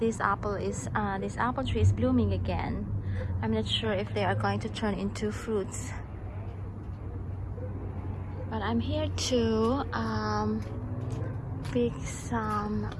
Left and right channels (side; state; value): both; identical; correlation 1.00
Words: this apple tree is blooming again. I'm not sure if they are going to turn into fruits. But I'm here to pick some